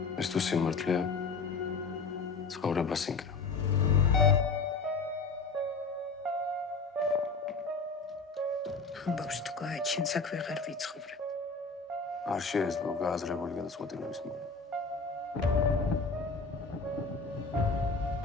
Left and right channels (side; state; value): right; quieter; 4.3 dB